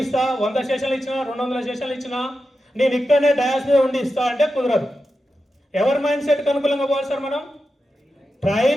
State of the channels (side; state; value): both; normal; correlation 0.90